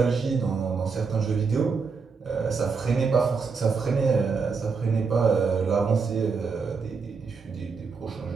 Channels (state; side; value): quieter; left; 5.0 dB